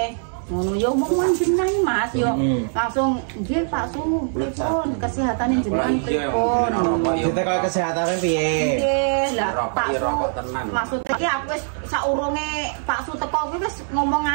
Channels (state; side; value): silent; left; digital silence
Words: Ngono yo omong jenengan Mas yo langsung nggih Pak Su pripun kesehatane jenengan pripun ditekok kesehatane piye nggih lah Pak Su maksudnya iki aku wis saurunge Pak Su teko kuwi wis ngomong